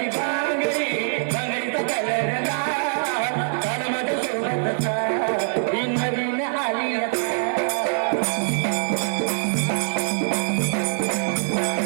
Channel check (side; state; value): left; silent; digital silence